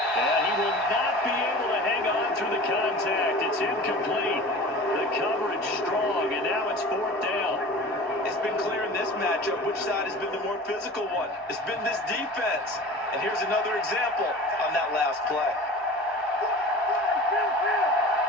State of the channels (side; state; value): both; normal; correlation 0.38